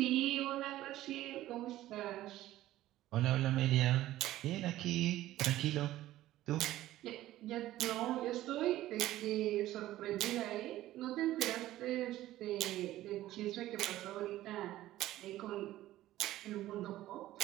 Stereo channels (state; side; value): quieter; left; 14.9 dB